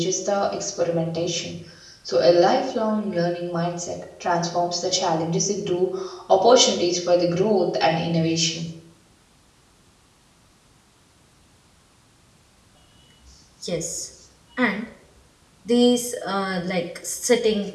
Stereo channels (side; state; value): both; identical; correlation 1.00